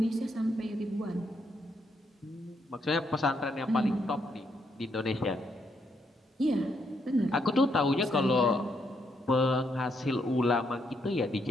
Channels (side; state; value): both; normal; correlation 0.76